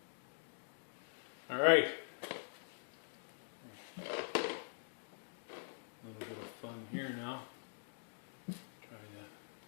All right. A little bit of fun here now. Trying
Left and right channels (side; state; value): right; silent; digital silence